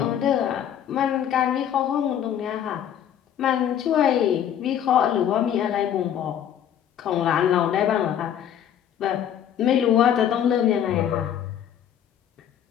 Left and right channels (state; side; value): quieter; right; 9.8 dB